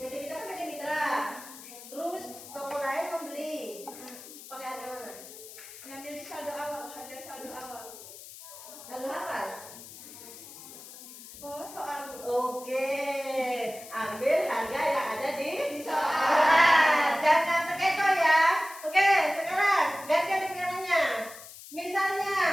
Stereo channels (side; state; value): left; noise; hiss, 15 dB below the sound